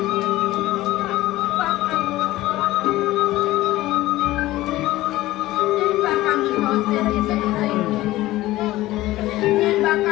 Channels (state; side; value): quieter; right; 16.9 dB